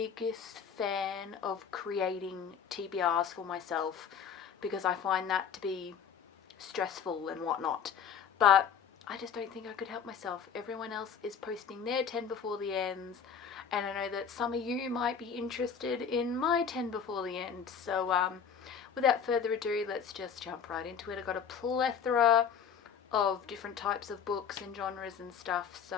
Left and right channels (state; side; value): quieter; right; 7.2 dB